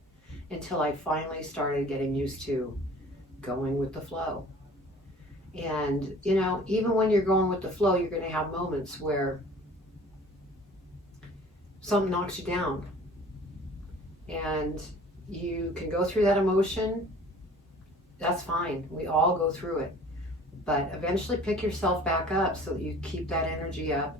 until I finally started getting used to going with the flow. And, you know, even when you're going with the flow, you're going to have moments where something knocks you down. And you can go through that emotion. That's fine. We all go through it. But eventually pick yourself back up so that you keep that energy up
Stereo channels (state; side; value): normal; both; correlation 0.48